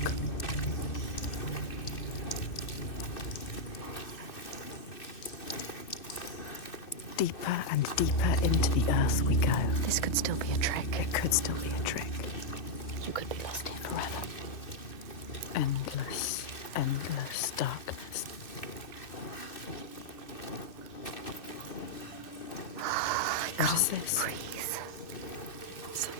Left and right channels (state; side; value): late; right; 2.6 ms